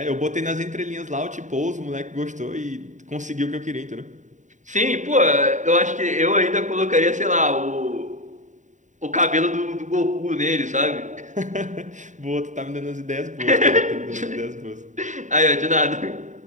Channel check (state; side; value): late; left; 0.36 ms